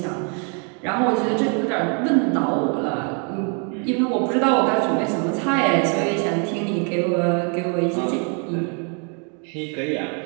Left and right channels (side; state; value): left; quieter; 38.2 dB